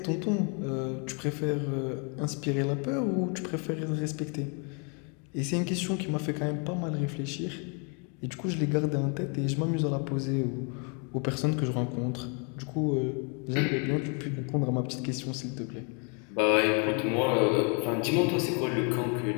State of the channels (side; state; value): right; quieter; 36.8 dB